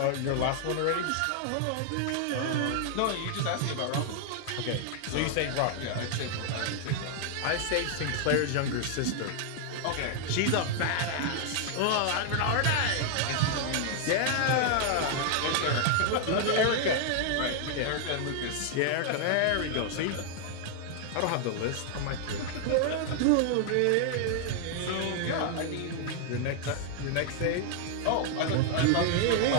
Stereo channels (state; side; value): different; both; correlation 0.00